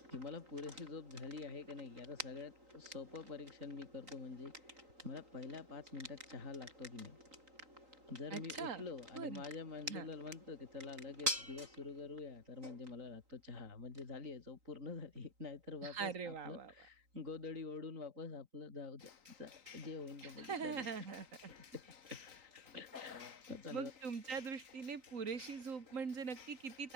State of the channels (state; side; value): late; left; 3.8 ms